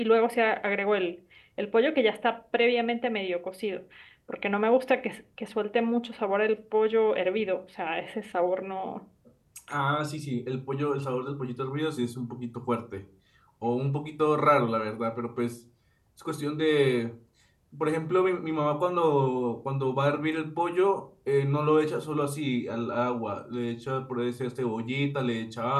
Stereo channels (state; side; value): identical; both; correlation 1.00